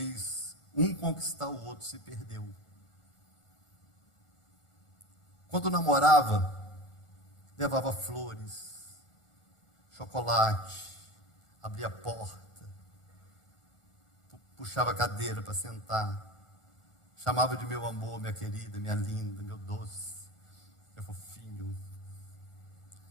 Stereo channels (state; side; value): late; right; 1.4 ms